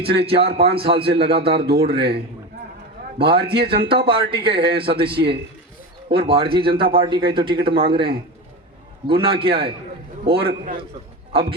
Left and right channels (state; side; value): normal; both; correlation 0.24